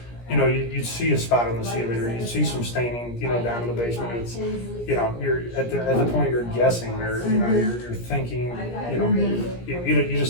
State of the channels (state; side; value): late; right; 17 ms